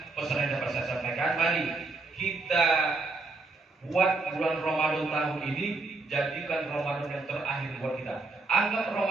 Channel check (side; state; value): left; quieter; 3.8 dB